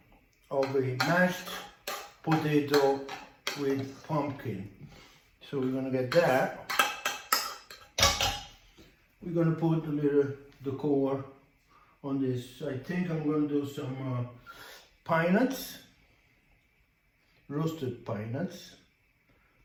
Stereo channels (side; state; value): both; identical; correlation 1.00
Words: of a mashed potato with pumpkin. So we're gonna get that. We're gonna put a little decor on this. I think I'm gonna do some pine nuts, roasted pine nuts,